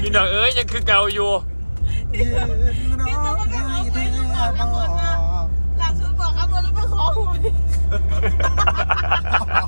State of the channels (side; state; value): both; inverted; correlation -1.00